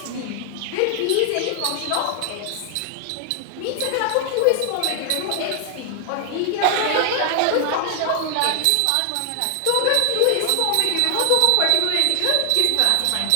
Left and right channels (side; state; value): both; different; correlation 0.00